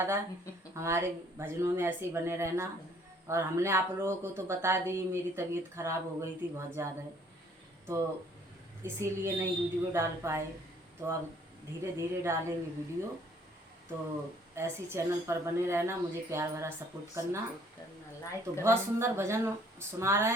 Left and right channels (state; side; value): normal; both; correlation 0.60